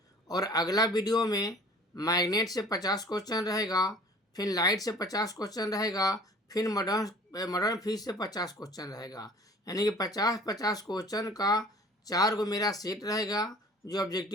और अगला वीडियो में मैग्नेट से 50 क्वेश्चन रहेगा, फिर लाइट से 50 क्वेश्चन रहेगा, फिर मॉडर्न फिजिक्स से 50 क्वेश्चन रहेगा। यानी कि 50-50 क्वेश्चन का 4 गो मेरा सेट रहेगा जो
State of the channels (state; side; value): normal; both; correlation 0.48